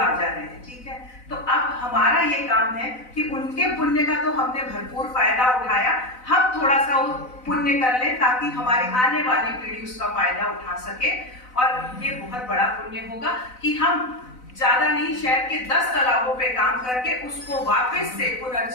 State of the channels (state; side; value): late; right; 4.0 ms